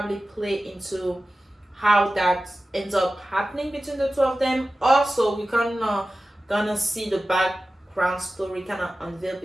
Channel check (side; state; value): both; normal; correlation 0.95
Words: play into how that ends up happening between the two of them. Also, we kind of gonna see the background story kind of unveil